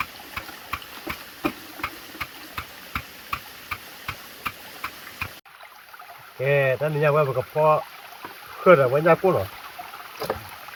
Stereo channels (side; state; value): both; identical; correlation 1.00